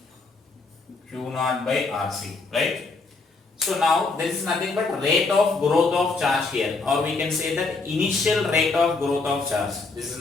q naught by rc, right? So now this is nothing but rate of growth of charge here, or we can say that initial rate of growth of charge. This is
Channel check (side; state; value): right; quieter; 3.9 dB